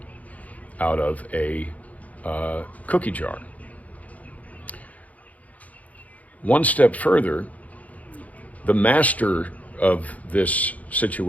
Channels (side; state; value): right; late; 0.072 ms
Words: out of a cookie jar. One step further, the master of this